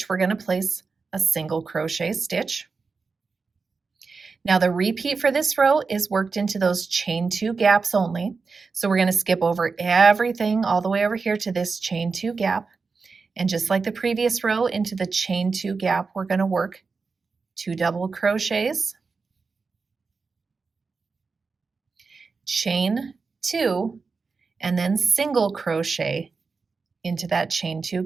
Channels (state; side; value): quieter; left; 4.6 dB